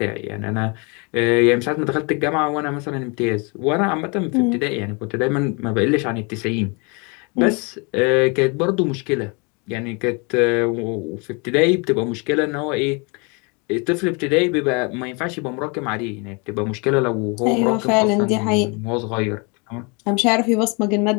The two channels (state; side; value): quieter; right; 31.7 dB